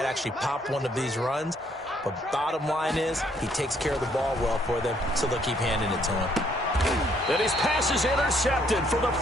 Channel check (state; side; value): normal; both; correlation 0.68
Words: actually pop one of these runs. But bottom line is he takes care of the ball well for them, so they'll keep handing it to him. And his pass is intercepted for the